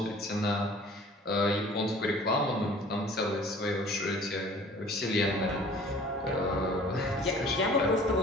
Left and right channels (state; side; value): normal; both; correlation 0.49